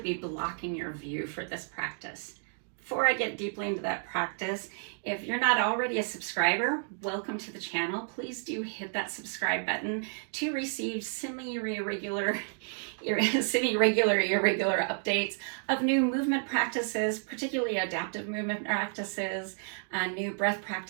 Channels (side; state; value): left; silent; 57 dB below the other